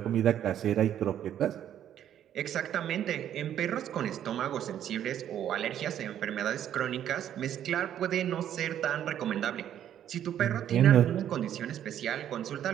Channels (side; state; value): left; quieter; 10.5 dB